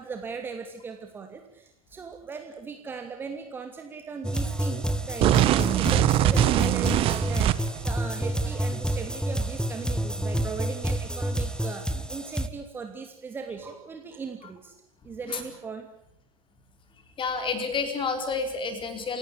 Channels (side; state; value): left; quieter; 4.7 dB